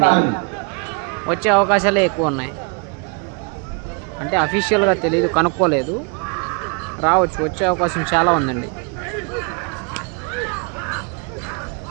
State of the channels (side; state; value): left; quieter; 33.9 dB